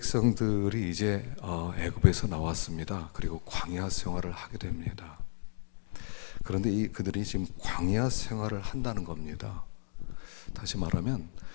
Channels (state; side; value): silent; right; digital silence